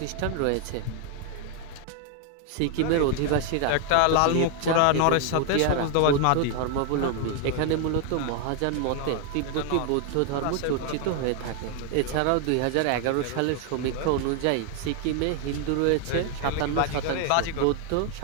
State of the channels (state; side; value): different; both; correlation 0.00